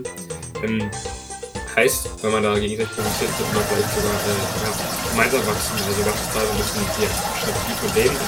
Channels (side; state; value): both; identical; correlation 1.00